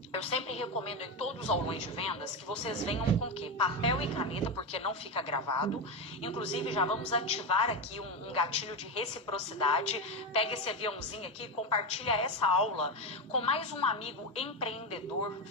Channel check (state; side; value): normal; both; correlation 0.13